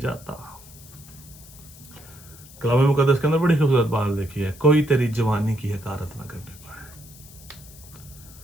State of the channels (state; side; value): noise; left; hiss, 20 dB below the sound